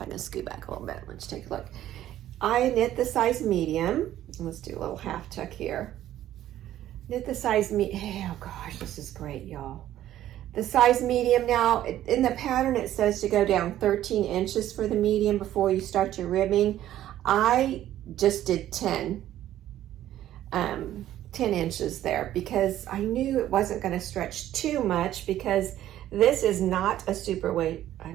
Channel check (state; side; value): quieter; left; 12.7 dB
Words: I can scoot back a little bit, let's take a look. I knit the size medium. Let's do a little half tuck here. Knit the size oh gosh, this is great, y'all. The size medium. Now, in the pattern, it says to go down 13 inches for the medium before you start your ribbing. I just did 10 inches there because I knew it wasn't going to stretch too much, because this is not a superwash. I